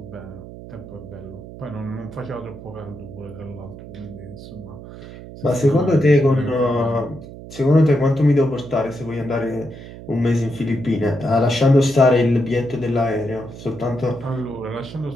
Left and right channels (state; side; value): noise; right; hum, 14 dB below the sound